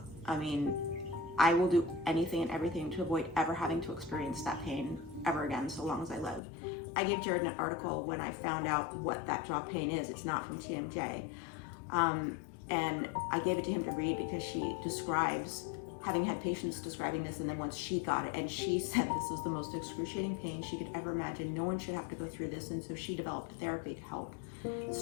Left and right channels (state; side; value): drops out; right; at 6.4 s